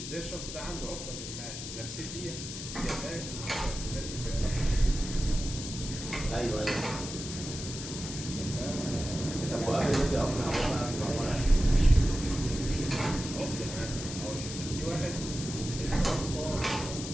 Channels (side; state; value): left; noise; hiss, 8 dB below the sound